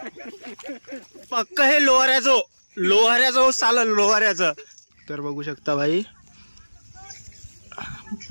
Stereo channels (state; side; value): inverted; both; correlation -1.00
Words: पक्क. हे लोहाऱ्याचं चाललं लोहाऱ्याचं. तर बघू शकता भाई